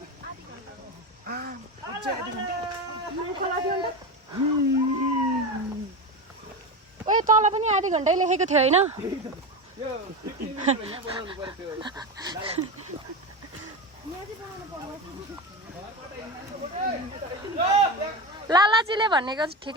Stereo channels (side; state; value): both; normal; correlation 0.21